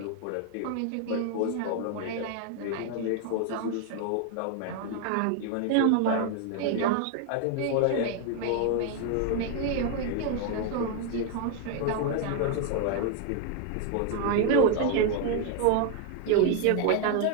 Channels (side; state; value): both; different; correlation 0.01